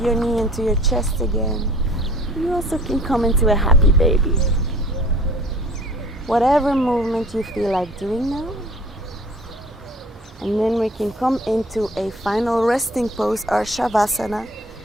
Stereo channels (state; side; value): normal; both; correlation 0.49